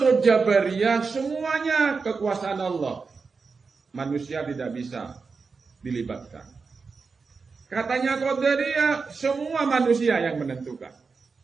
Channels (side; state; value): left; quieter; 4.8 dB